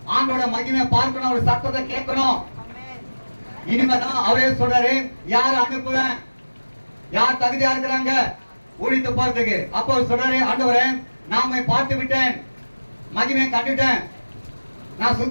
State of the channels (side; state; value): both; inverted; correlation -1.00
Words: ஆண்டோட மகிமை பார்க்கணும், அவர் சத்தத்தை கேட்கணும். இனிமேதான் அவரே சொல்றாரு, யார் அனுப்புவேன், யார் தகுதியா இருக்கிறாங்க ஊழித்து போறதுக்கு. அப்போ அவர் சொல்றாரு, ஆண்டவரே நாம பார்த்து விட்டேன், மகிமை கண்டுட்டேன், நான்